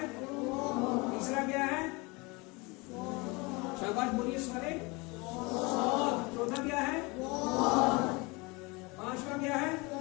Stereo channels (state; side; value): quieter; right; 26.4 dB